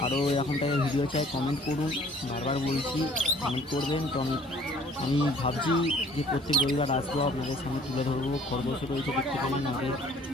আরও এরকম টাইপের ভিডিও চাই, কমেন্ট করুন। বারবার বলছি কমেন্ট করবেন। তো আমি ভাবছি যে প্রত্যেক রবিবার আসবো, আপনাদের সামনে তুলে ধরবো। খরগোশ রয়েছে, দেখতে পারেন।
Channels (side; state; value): both; normal; correlation 0.55